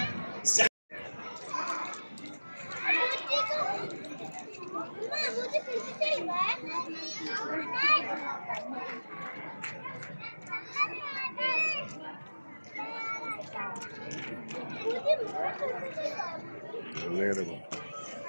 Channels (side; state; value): both; inverted; correlation -1.00